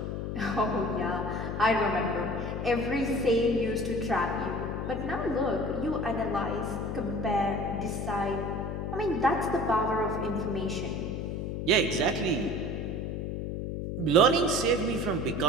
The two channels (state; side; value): noise; left; hum, 3 dB below the sound